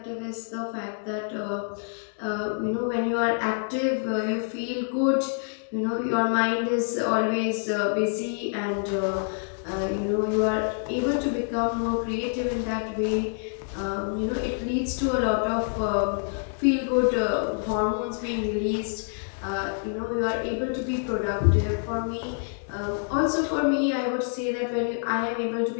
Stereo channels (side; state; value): right; silent; 60 dB below the other